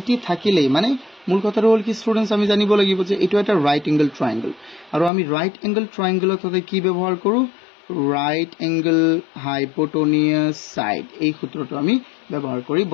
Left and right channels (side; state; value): right; drops out; at 5.1 s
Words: থাকিলেই মানে মূল কথাটো হল কি স্টুডেন্টস আমি জানিব লাগিব যে এটো এটা রাইট এঙ্গেল ট্রায়াঙ্গেল আৰু আমি ৰাইট এঙ্গেল ট্ৰায়াঙ্গেলত হতে কি ব্যৱহাৰ কৰো ৰাইট এঙ্গেল হাইপোটেনিয়াস সাইড এই সূত্ৰটো আমি ব্যৱহাৰ কৰি